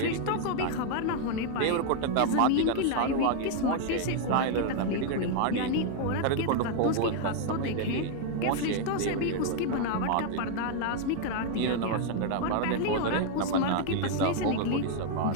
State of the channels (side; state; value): both; different; correlation 0.00